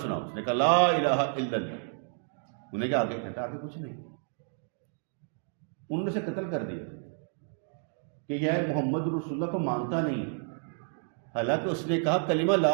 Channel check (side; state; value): left; silent; digital silence